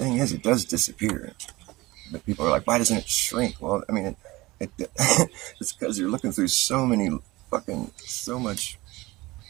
thing is, it does disappear. But people are like, why doesn't it shrink? Well, I mean, it's because you're looking through so much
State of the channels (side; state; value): left; quieter; 20.7 dB